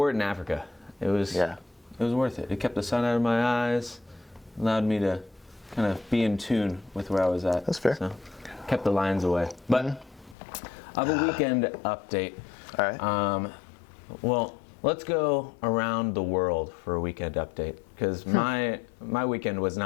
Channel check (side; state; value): right; drops out; at 10.4 s